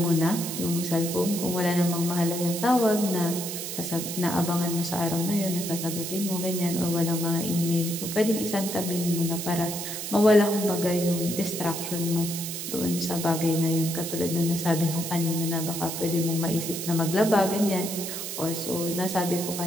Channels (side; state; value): right; noise; hiss, 6 dB below the sound